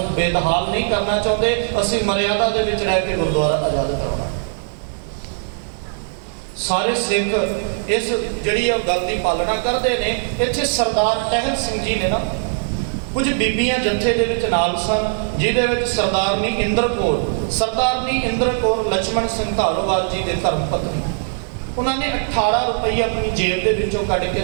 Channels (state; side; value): silent; left; digital silence